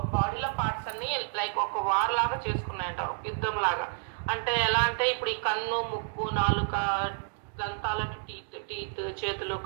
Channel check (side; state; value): left; silent; digital silence